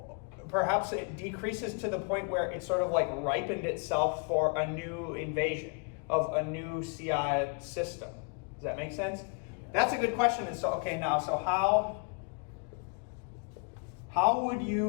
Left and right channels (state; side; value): quieter; right; 35.3 dB